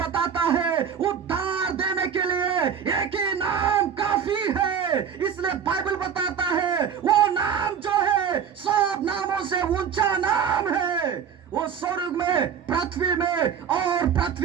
है, उद्धार देने के लिए एक ही नाम काफी है। इसलिए बाइबल बताता है, वो नाम जो है सब नामों से ऊंचा नाम है। वो स्वर्ग में, पृथ्वी में और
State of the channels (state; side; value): quieter; left; 7.8 dB